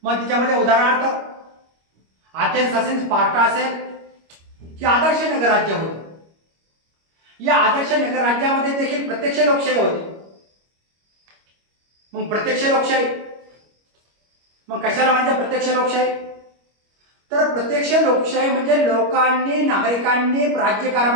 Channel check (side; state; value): left; late; 25 ms